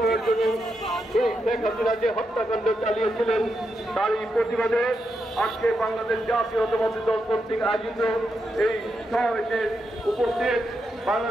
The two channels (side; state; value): both; normal; correlation 0.84